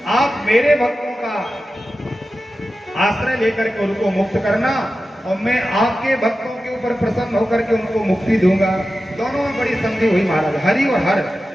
आप मेरे भक्तों का आश्रय लेकर के उनको मुक्त करना, और मैं आपके भक्तों के ऊपर प्रसन्न होकर के उनको मुक्ति दूंगा। दोनों में बड़ी संधि हुई महाराज, हरि और हर।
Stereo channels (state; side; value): normal; both; correlation 0.93